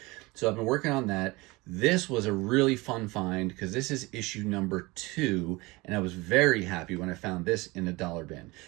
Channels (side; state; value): left; quieter; 22.9 dB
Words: So I've been working on that. This was a really fun find because this is issue #2, and I was very happy when I found this in a dollar bin.